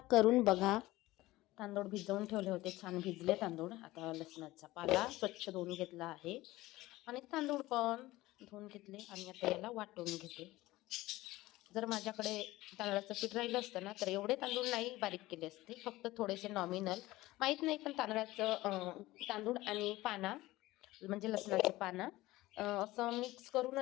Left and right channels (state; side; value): quieter; right; 18.1 dB